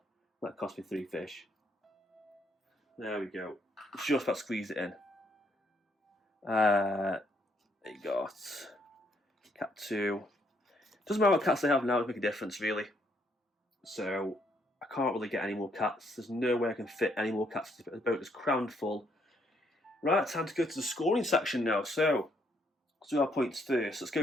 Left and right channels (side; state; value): both; normal; correlation 0.71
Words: That cost me 3 fish. There we go. Just about squeeze it in. They got cat 2. Doesn't matter what cats they have now, it'll make a difference really. So I can't really get any more cats. There's no way I can fit any more cats. The boat is crammed full. Right, time to go to the scoring section now. So let's do our points first. Let's